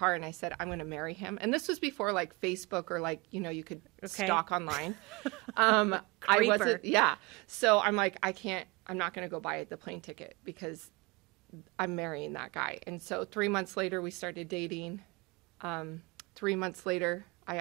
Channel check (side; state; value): left; quieter; 26.1 dB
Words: and I said, I'm going to marry him. And this was before like Facebook or like, you know, you could stalk online. Creeper. So I'm like, I'm not going to go buy the plane ticket because I'm marrying that guy. And so 3 months later, we started dating. 3 months later, I